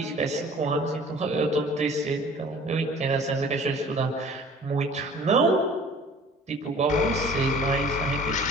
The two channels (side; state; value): both; normal; correlation 0.48